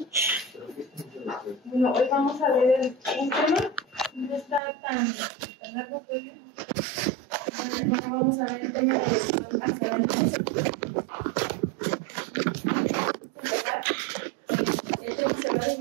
Bueno, hoy vamos a ver un tema, no está tan largo, pero vamos a ver el tema de hasta el esto se va a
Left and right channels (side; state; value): left; drops out; at 4.6 s